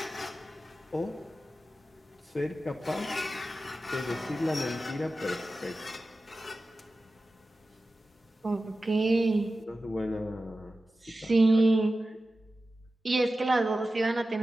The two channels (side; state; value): both; normal; correlation 0.94